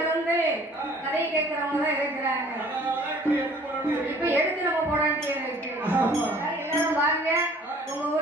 கதை கேட்கிறவங்க தான் இருக்கிறாங்க. இப்ப எடுத்து நம்ம போட வேண்டியது இருக்கு. எல்லாரும் வாங்க, உங்க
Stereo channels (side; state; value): both; normal; correlation 0.53